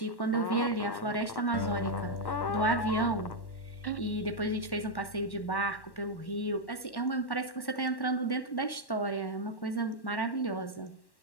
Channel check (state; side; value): late; right; 1.1 ms